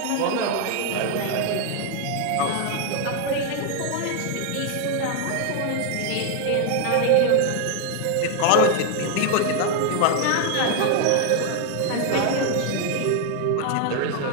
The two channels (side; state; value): both; different; correlation 0.00